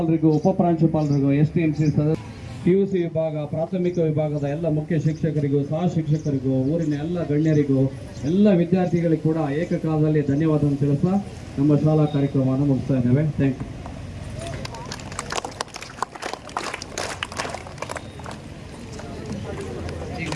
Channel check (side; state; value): both; identical; correlation 1.00